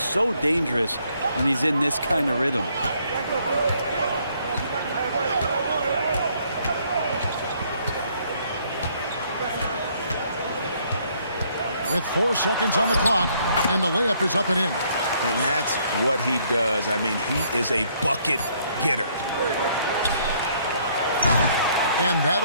dangerous when he's in this kind of rhythm. with 4 seconds on the clock, and the layup is up and in. And that's what he does. I mean, he is a bucket getter. And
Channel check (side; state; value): both; inverted; correlation -0.66